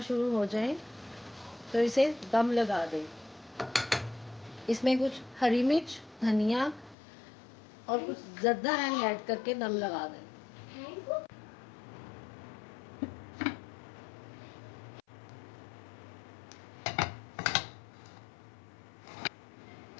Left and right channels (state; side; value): drops out; right; at 7.0 s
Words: शुरू हो जाएं तो इसे दम लगा दें। इसमें कुछ हरी मिर्च, धनिया और कुछ ज़र्दा ऐड करके दम लगा दें।